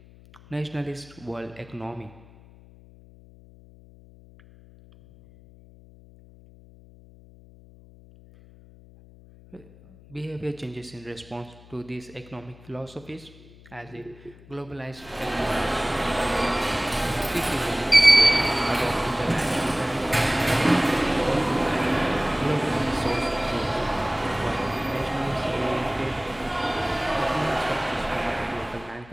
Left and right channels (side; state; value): left; noise; hum, 23 dB below the sound